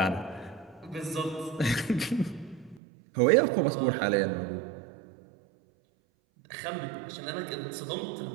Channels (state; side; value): drops out; left; at 2.8 s